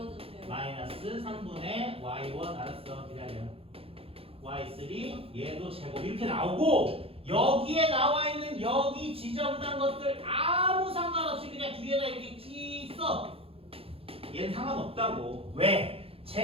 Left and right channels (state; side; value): late; left; 0.27 ms